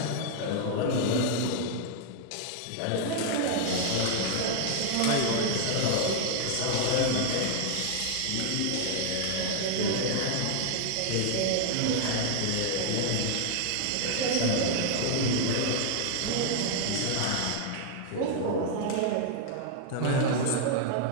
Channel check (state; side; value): different; both; correlation -0.01